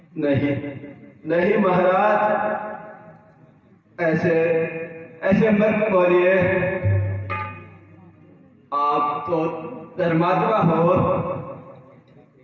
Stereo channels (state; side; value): identical; both; correlation 1.00